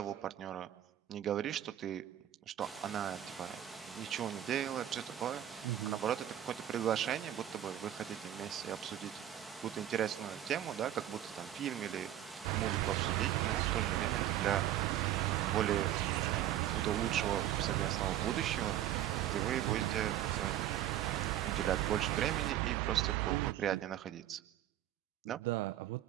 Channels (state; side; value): quieter; left; 12.0 dB